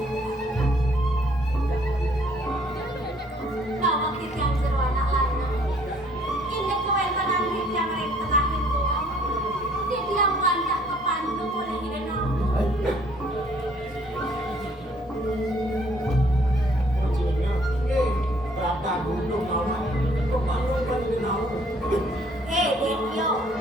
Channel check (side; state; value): both; normal; correlation 0.61